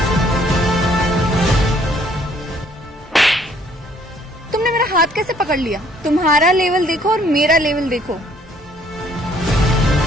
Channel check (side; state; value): both; normal; correlation 0.62